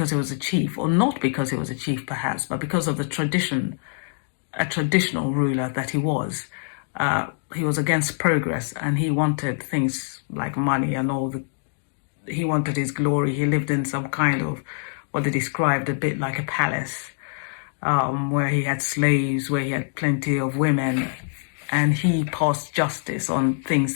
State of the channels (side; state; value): right; silent; digital silence